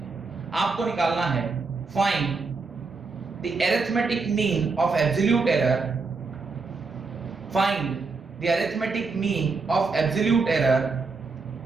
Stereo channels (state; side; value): quieter; left; 4.3 dB